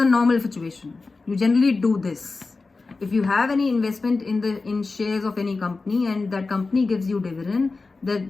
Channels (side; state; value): right; quieter; 3.9 dB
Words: a normal situation. You generally do this. If you have any investment in shares of any company and that company gives you dividend,